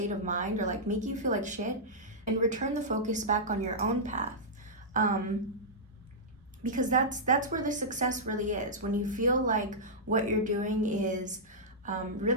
of mind, or like making you feel like shit, and return the focus back on your own path. Because that's where the success really is. When you feel like what you're doing is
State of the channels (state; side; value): normal; both; correlation -0.11